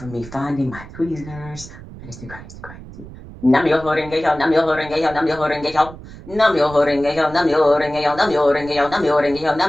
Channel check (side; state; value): right; noise; rumble, 16 dB below the sound